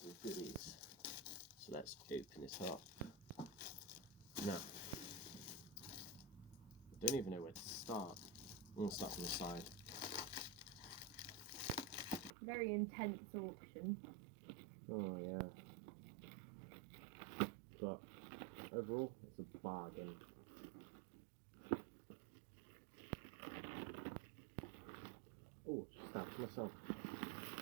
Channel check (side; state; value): left; drops out; at 12.3 s